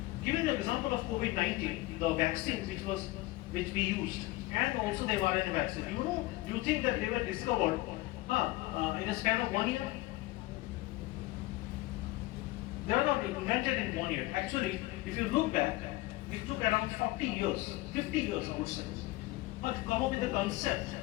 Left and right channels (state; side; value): quieter; right; 19.6 dB